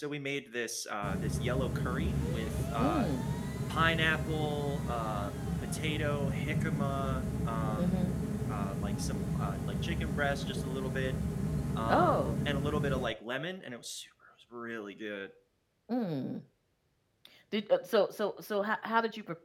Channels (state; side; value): identical; both; correlation 1.00